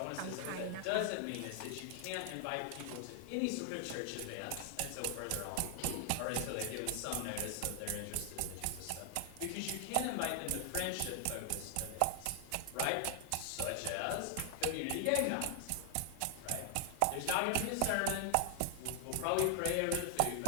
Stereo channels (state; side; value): different; both; correlation 0.00